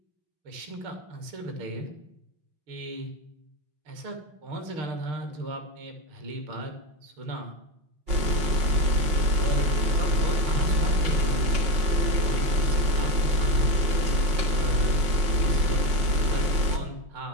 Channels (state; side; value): late; left; 5.7 ms